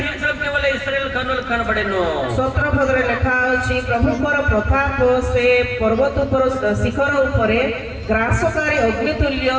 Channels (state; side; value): identical; both; correlation 1.00